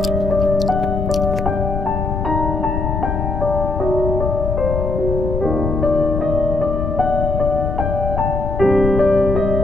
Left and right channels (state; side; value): noise; left; rumble, 2 dB below the sound